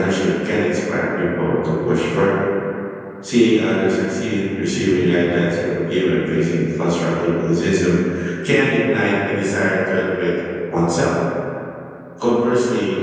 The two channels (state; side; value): identical; both; correlation 1.00